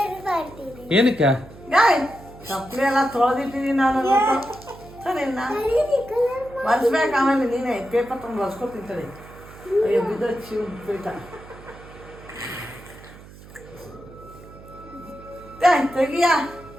ಏನಕ್ಕೆ? ಚಪ್ಪಲಿ ಎಲ್ಲ ತೊಳೆದಿಟ್ಟಿದ್ದೀನಿ ನಾನು. ಒರೆಸ್ಬೇಕು, ಆಮೇಲೆ ನೀನೇ ಪೇಪರ್ ತಂದು ಒರೆಸ್ಕೊತಿಂತೇಳಿ. ಅಯ್ಯೋ ಬಿದ್ದು ಶಿವ ಪೀಠ ತೆಗಿಯ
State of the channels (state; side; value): noise; right; hum, 19 dB below the sound